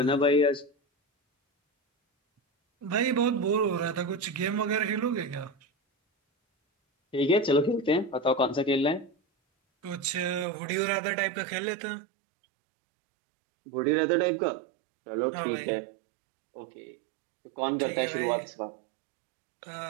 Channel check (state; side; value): drops out; left; at 10.5 s